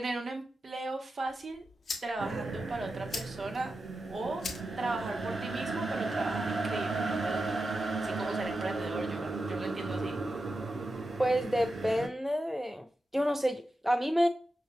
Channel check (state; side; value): normal; both; correlation 0.90